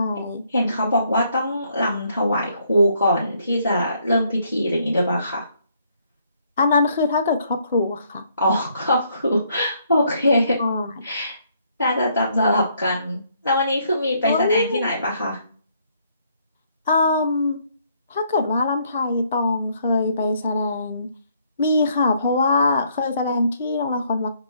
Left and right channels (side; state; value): both; inverted; correlation -0.69